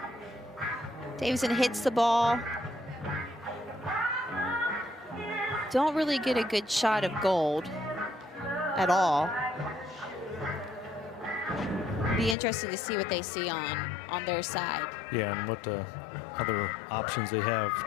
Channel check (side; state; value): right; drops out; at 12.4 s